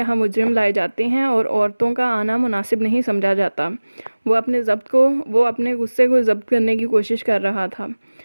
مجرم لائے جاتے ہیں اور عورتوں کا آنا مناسب نہیں سمجھا جاتا۔ وہ اپنے غصے کو ضبط کرنے کی کوشش کر رہا تھا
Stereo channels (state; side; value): inverted; both; correlation -1.00